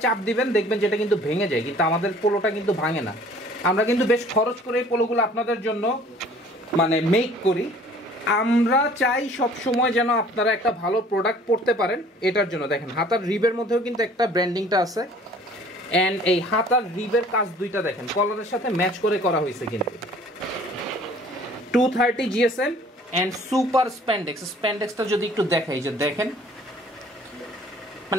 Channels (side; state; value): both; normal; correlation 0.52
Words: চাপ দিবেন, দেখবেন যেটা কিন্তু ভেঙে যায়, কিন্তু আমাদের পোলোটা কিন্তু ভাঙে না। আমরা কিন্তু বেশ খরচ করে এই পোলোগুলো আপনাদের জন্য মানে মেক করি। আমরা চাই সব সময় যেন আপনারা একটা ভালো প্রোডাক্ট পড়তে পারেন, এটার জন্য দেখেন হাতার রিবের মধ্যেও কিন্তু একটা ব্র্যান্ডিংটা আছে। অ্যান্ড এই হাতার রিবের কাজ দুইটা দেখেন কলারের সাথে ম্যাচ করে করা হয়েছে কিন্তু। 230 GSM অ্যান্ড সুপার স্প্যান্ডেক্সটা যদি একটু দেখাই, যে দেখেন